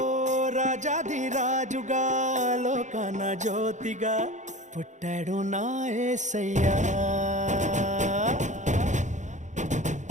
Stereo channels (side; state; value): left; late; 0.35 ms